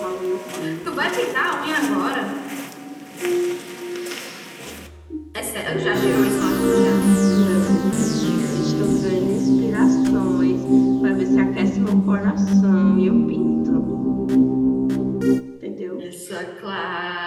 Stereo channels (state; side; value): identical; both; correlation 1.00